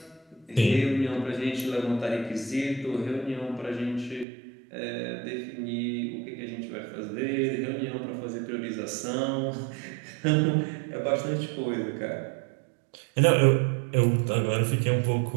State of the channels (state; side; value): drops out; left; at 4.2 s